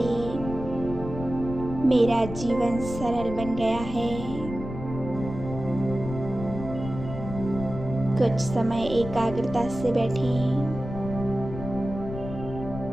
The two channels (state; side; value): noise; left; rumble, 9 dB below the sound